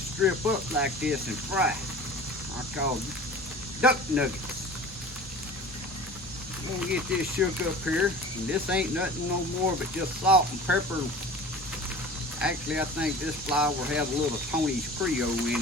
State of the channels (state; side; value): normal; both; correlation 0.40